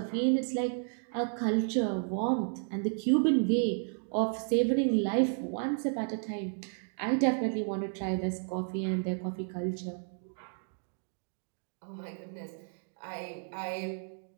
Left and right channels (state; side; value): silent; left; 56 dB below the other